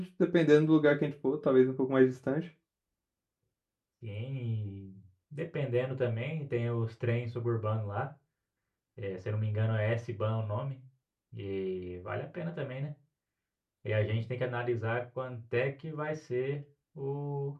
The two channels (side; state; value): both; identical; correlation 1.00